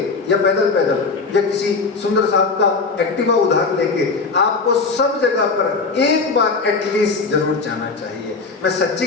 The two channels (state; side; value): quieter; right; 4.3 dB